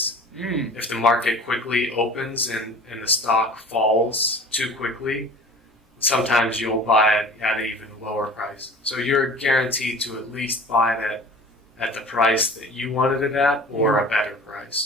If the market quickly opens and the stock falls too quickly, sometimes you'll buy it at an even lower price. So you're guaranteed to at least buy it at the price that you wanted it at or a better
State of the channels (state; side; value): normal; both; correlation 0.42